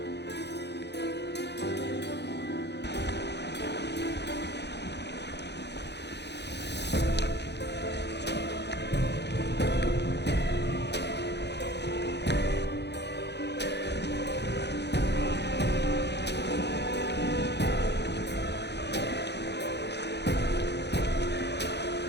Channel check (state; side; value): late; right; 0.50 ms